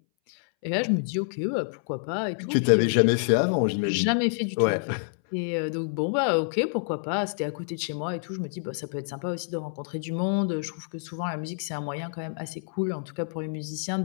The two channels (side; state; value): right; silent; 60 dB below the other